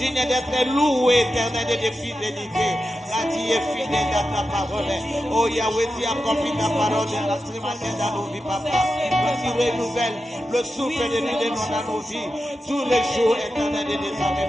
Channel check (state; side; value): normal; both; correlation 0.90